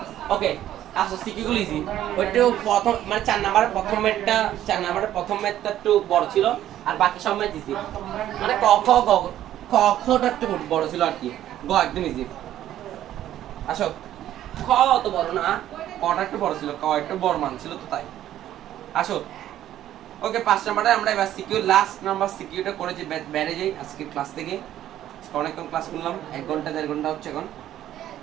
ওকে আসো সিকি গুলো ইজি, ওইটাও প্রথম মানে 4 নাম্বারের প্রথম ম্যাথটা একটু বড় ছিল, আর বাকি সব ম্যাথ ইজি। মানে ক খ গ খ খটা একটু বড় ছিল আর কি, গ একদম ইজি। আসো, খ অত বড় না, কটা একটু বড় ছিল, ক একটু বড় মান ছিল তো তাই। আসো, ওকে 5 নাম্বারে আমরা এবার সিকিউ লাস্ট নাম্বার সিকিউটা করে যে বেড়ে যাই আজকে ক্লাস থেকে। অনেকক্ষণ ক্লাস করলাম, 1 ঘন্টা 1.5 ঘন্টা হচ্ছে এখন।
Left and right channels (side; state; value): left; quieter; 12.3 dB